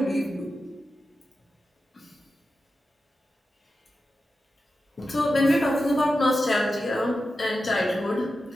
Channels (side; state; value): both; normal; correlation 0.91